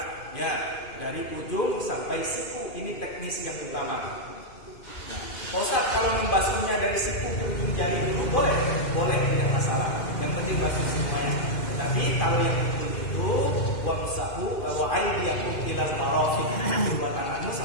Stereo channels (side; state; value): right; late; 2.5 ms